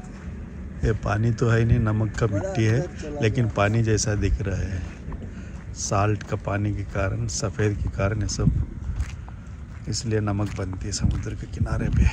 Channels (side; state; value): both; identical; correlation 1.00